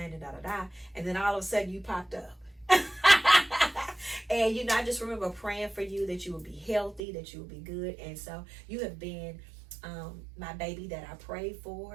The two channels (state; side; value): drops out; left; at 7.0 s